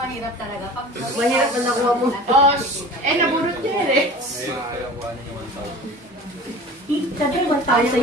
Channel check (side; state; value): both; normal; correlation 0.40